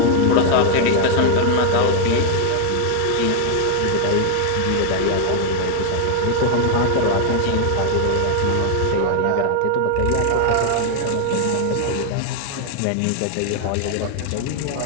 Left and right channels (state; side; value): different; both; correlation 0.00